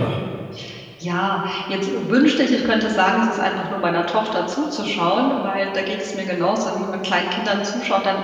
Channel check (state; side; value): identical; both; correlation 1.00